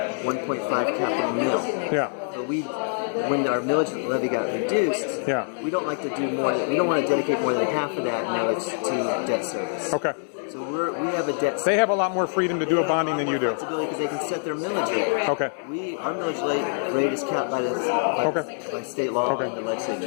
1.5 capital mill. Yeah. But when our millage levy got reduced, we don't like to do more. We don't want to dedicate more than half of that millage to debt service. Okay. So we have a debt. They have a lot more freedom to do a bonding than you do. Because they can set their millage rate. Okay. Our millage rate is capped by state law and the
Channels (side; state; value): right; silent; digital silence